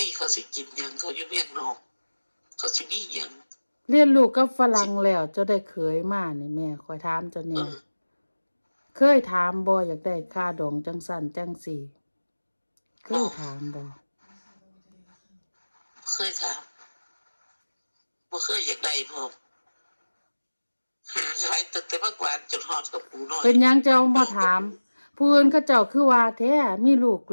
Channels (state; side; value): inverted; both; correlation -1.00